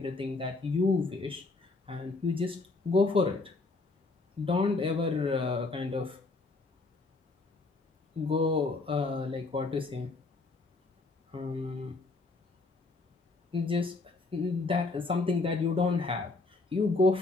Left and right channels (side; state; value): right; quieter; 3.5 dB